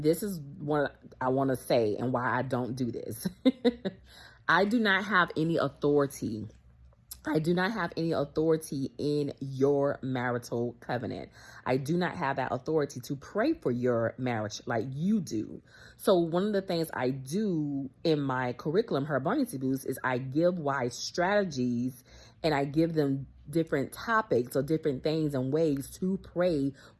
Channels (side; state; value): both; identical; correlation 1.00